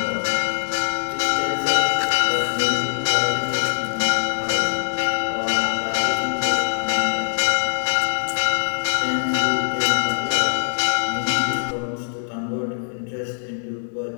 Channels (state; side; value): silent; right; digital silence